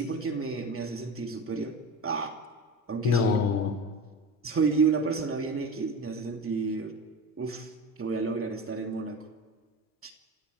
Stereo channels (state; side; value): normal; both; correlation 0.29